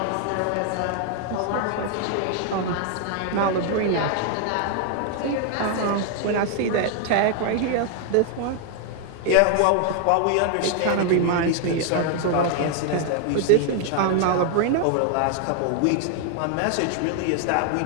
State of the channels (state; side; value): different; both; correlation 0.00